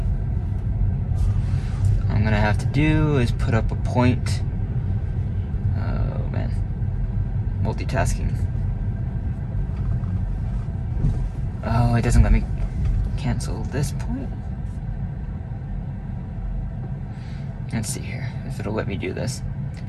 What I'm gonna have to do is put up a point. Oh man, multitasking. Oh, it doesn't let me cancel this point. Let's see here if it'll let me do this.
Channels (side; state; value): both; identical; correlation 1.00